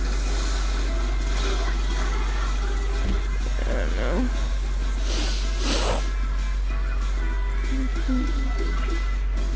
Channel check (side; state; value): both; identical; correlation 1.00